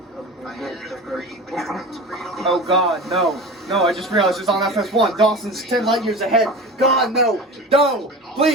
Oh God, no. No, I just realized it's on FS1. Dawson's 10 light years ahead. God, no. No.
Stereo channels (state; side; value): normal; both; correlation 0.32